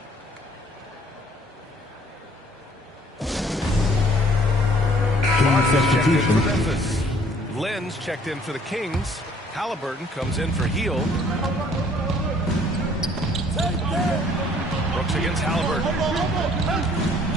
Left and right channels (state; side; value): normal; both; correlation 0.58